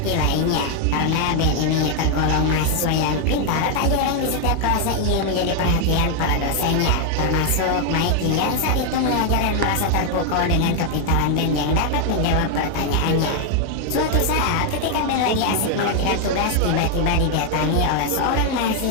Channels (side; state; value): both; different; correlation 0.00